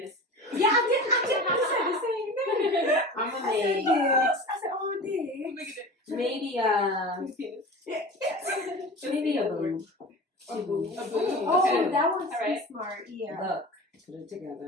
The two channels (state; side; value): normal; both; correlation 0.34